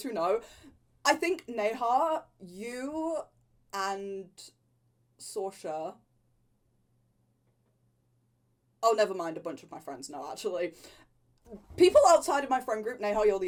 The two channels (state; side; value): identical; both; correlation 1.00